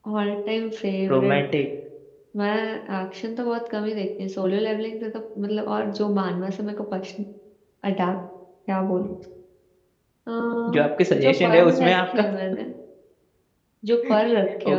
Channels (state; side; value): identical; both; correlation 1.00